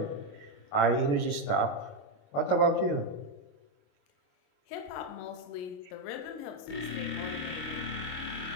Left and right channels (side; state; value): right; late; 28 ms